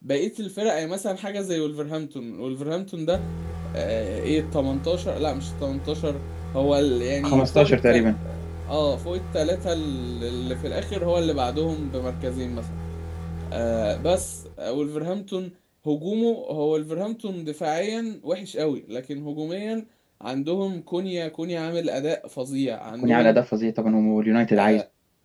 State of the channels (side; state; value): both; identical; correlation 1.00